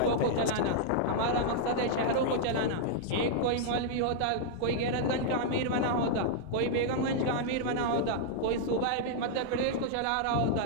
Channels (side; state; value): both; different; correlation -0.01